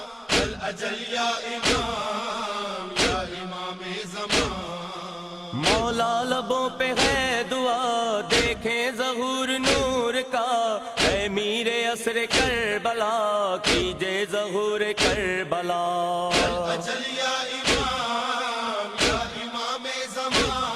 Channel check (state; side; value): identical; both; correlation 1.00